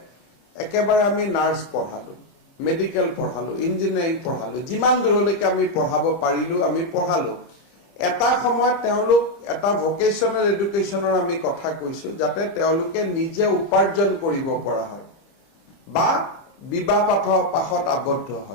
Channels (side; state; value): right; late; 30 ms